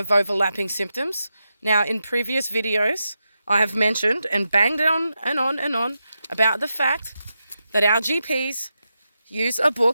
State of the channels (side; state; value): both; inverted; correlation -0.88